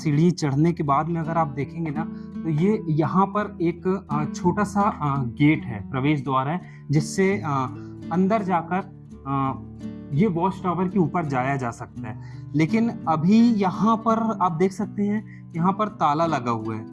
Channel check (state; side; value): identical; both; correlation 1.00